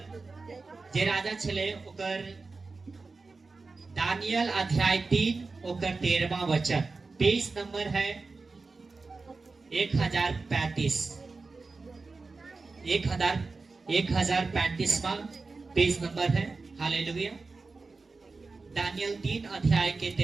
जे राजा छले ओकर दानियल अध्याय 3 ओकर 13वां वचन, पेज नंबर है 1035, 1035वां पेज नंबर है। हालेलुया, दानियल 3 अध्याय के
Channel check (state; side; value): quieter; left; 4.0 dB